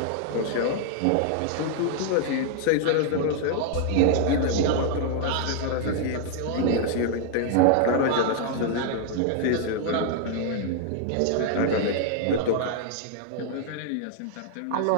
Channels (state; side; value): different; both; correlation -0.01